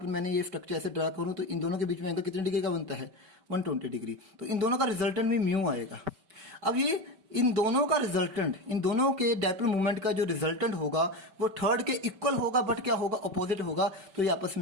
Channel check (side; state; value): left; late; 5.2 ms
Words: मैंने ये स्ट्रक्चर ऐसे ड्रा करूँ तो इन दोनों के बीच में एंगल कितने डिग्री का बनता है, 120 डिग्री। तो इन दोनों का रिजल्टेंट भी म्यू आएगा। अब ये इन दोनों का रिजल्टेंट, इन दोनों के डाइपोल मोमेंट का जो रिजल्टेंट होगा वो थर्ड के इक्वल होगा बट क्या होगा, अपोजिट होगा। तो ये आपस